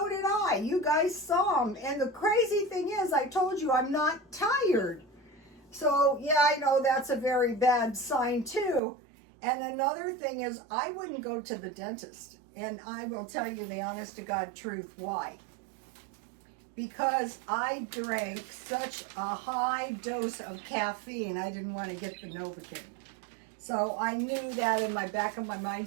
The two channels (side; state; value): left; drops out; at 8.8 s